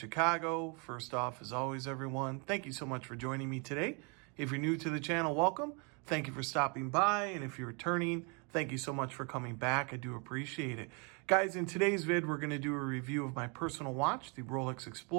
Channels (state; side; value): quieter; left; 33.7 dB